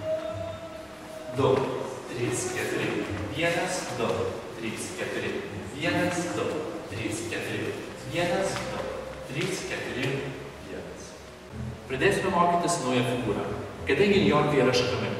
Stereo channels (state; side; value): identical; both; correlation 1.00